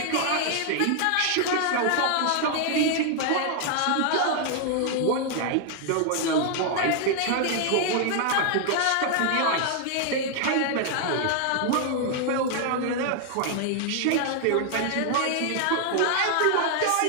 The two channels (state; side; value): different; both; correlation 0.00